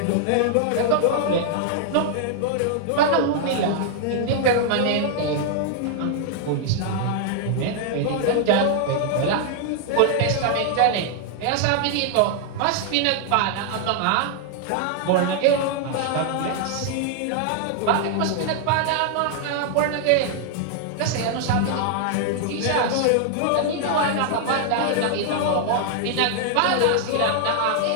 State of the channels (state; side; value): different; both; correlation 0.00